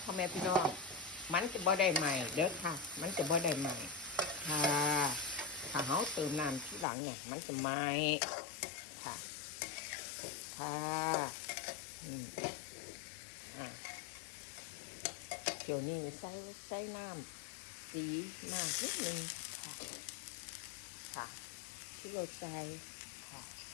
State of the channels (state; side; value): drops out; right; at 6.9 s